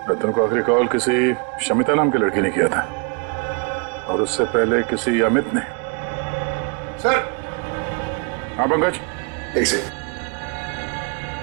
रतन को आखिरी कॉल किसी शमिता नाम की लड़की ने किया था और उससे पहले किसी अमित ने। सर। हाँ पंकज। एक सेकंड,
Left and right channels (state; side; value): quieter; left; 34.2 dB